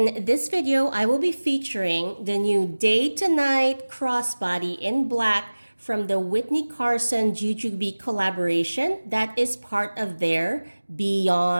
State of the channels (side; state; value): both; inverted; correlation -1.00